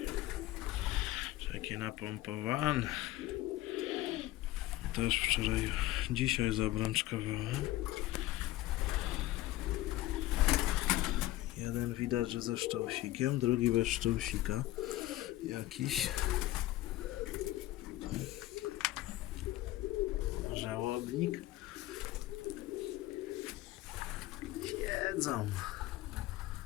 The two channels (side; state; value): right; quieter; 16.3 dB